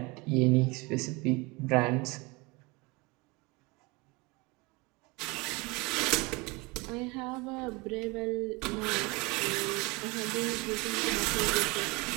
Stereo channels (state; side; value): quieter; left; 25.8 dB